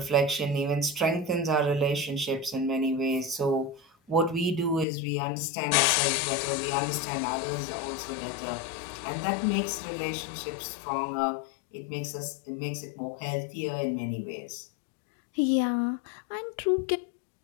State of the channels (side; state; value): right; drops out; at 4.9 s